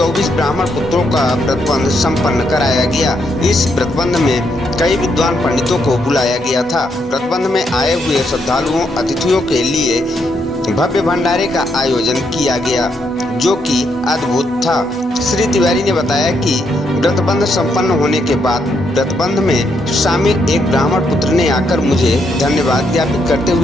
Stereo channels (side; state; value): both; normal; correlation 0.77